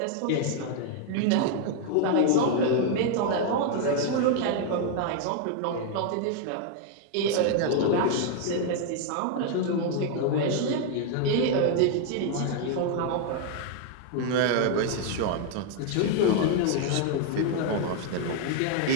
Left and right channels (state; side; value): different; both; correlation 0.00